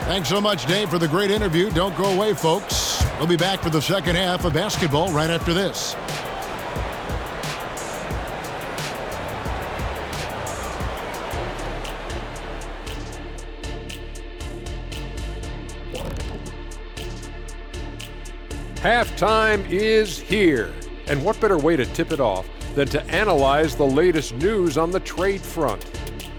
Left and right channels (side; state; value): both; identical; correlation 1.00